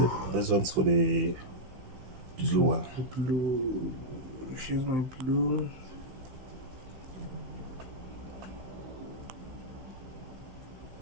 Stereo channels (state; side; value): late; left; 16 ms